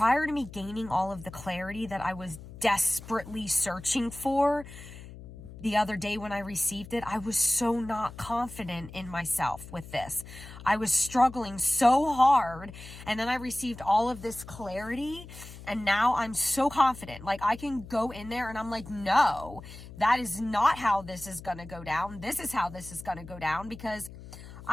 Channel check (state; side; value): noise; left; hum, 15 dB below the sound